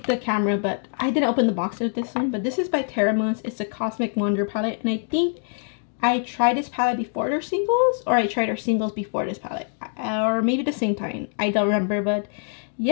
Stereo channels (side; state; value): right; silent; digital silence